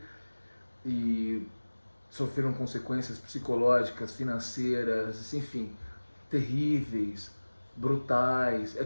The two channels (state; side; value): inverted; both; correlation -1.00